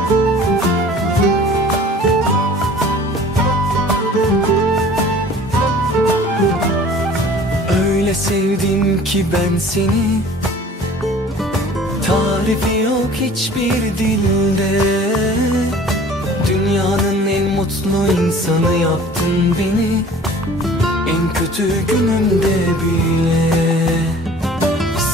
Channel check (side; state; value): both; normal; correlation 0.47